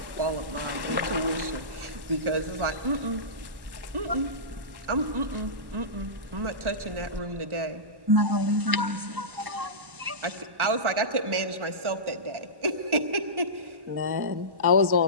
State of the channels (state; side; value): late; left; 1.1 ms